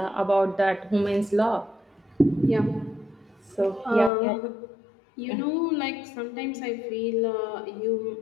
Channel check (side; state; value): right; drops out; at 4.1 s